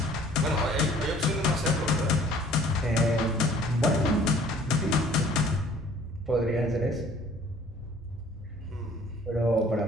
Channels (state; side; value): normal; both; correlation 0.54